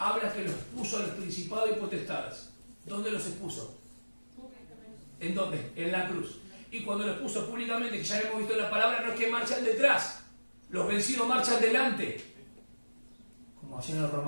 que los puso a los principados y potestades. ¿Dónde los expuso? ¿En dónde? En la cruz. Y cuando los puso públicamente, que ya hemos visto en la palabra, no es que marchan detrás. Los vencidos marchan delante. Como hacían los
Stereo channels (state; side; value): inverted; both; correlation -1.00